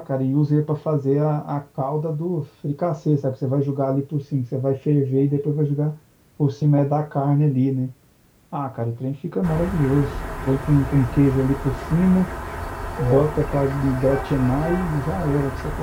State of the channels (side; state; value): both; identical; correlation 1.00